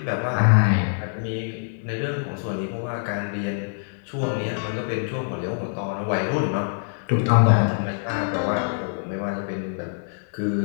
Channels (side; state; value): right; silent; 62 dB below the other